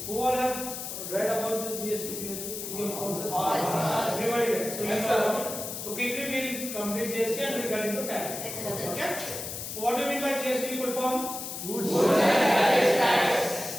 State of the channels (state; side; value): noise; left; hiss, 7 dB below the sound